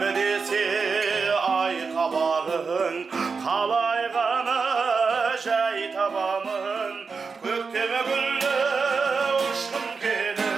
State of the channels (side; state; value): left; quieter; 5.0 dB